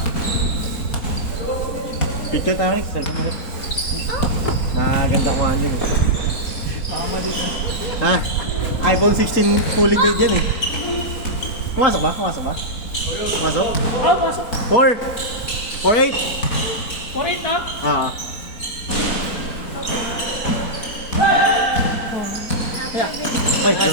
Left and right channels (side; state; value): right; late; 4.1 ms